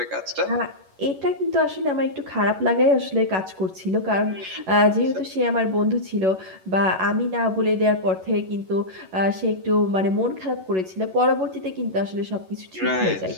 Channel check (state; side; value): late; left; 11 ms